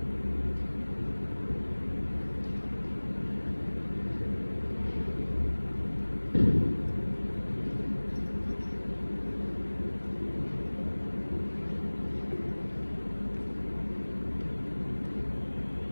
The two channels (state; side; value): inverted; both; correlation -1.00